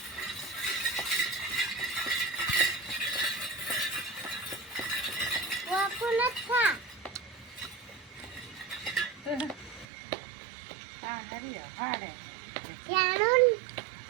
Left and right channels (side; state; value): left; drops out; at 9.9 s